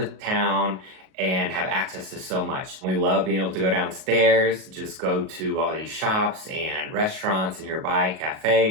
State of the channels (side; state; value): left; late; 38 ms